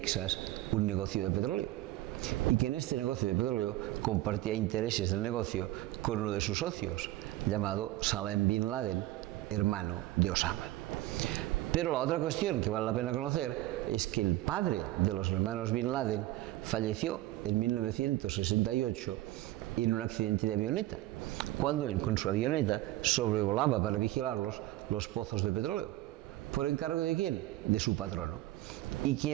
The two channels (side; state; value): left; quieter; 16.6 dB